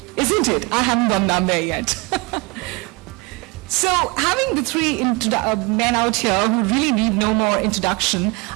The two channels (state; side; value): quieter; left; 26.7 dB